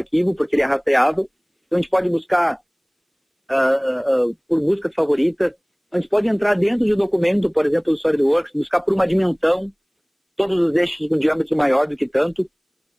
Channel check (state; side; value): identical; both; correlation 1.00